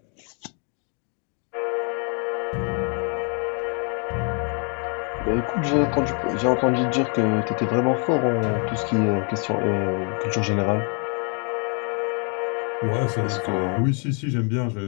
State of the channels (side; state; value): right; quieter; 38.6 dB